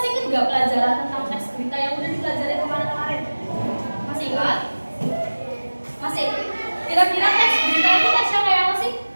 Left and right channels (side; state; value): both; inverted; correlation -1.00